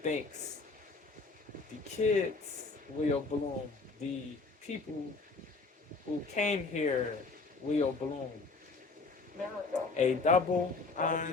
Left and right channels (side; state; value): right; quieter; 3.9 dB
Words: the kids will bloom, the people who came here will bloom. A double